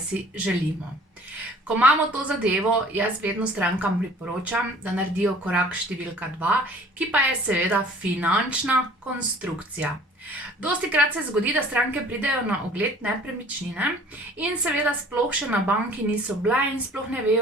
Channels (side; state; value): both; normal; correlation 0.51